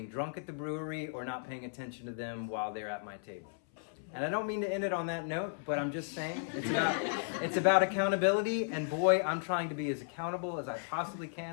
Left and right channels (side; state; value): right; silent; 55 dB below the other